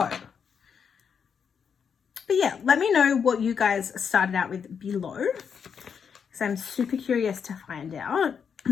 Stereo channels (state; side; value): quieter; right; 6.9 dB